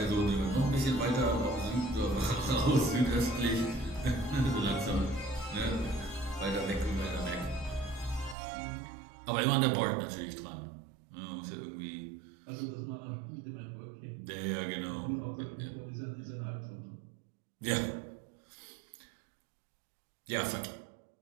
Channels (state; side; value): drops out; left; at 8.3 s